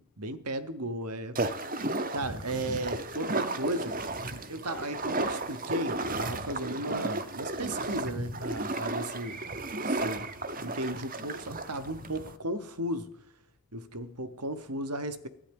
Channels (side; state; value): both; normal; correlation -0.03